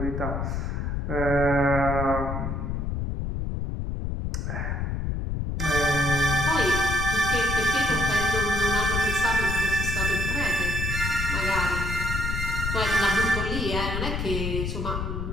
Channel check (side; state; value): left; noise; rumble, 2 dB below the sound